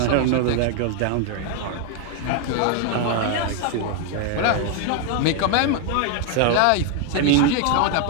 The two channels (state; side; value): different; both; correlation 0.00